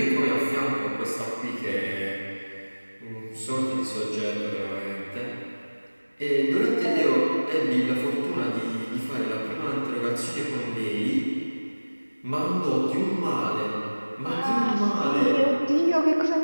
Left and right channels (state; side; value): inverted; both; correlation -1.00